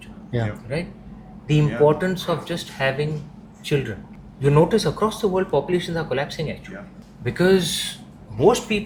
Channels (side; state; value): both; identical; correlation 1.00